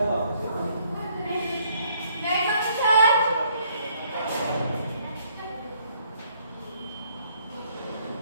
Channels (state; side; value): inverted; both; correlation -0.67